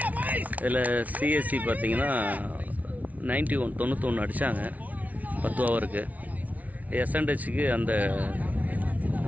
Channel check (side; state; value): left; late; 0.072 ms